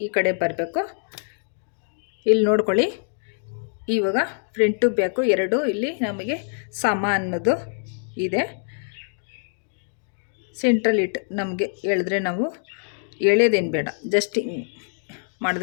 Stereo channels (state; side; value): silent; right; digital silence